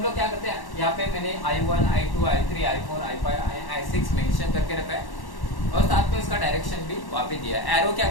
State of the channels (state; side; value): late; right; 1.1 ms